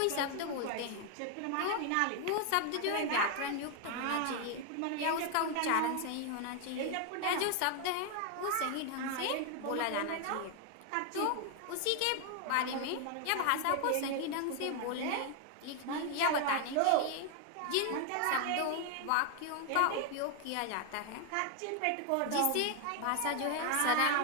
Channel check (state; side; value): different; both; correlation 0.00